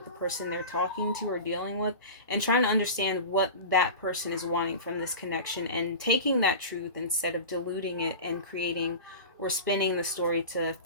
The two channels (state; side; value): inverted; both; correlation -0.31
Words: the person they're talking to or dealing with, and trying to understand what that person is wanting from this connection, and taking that truth instead of diluting it and creating or spinning the story to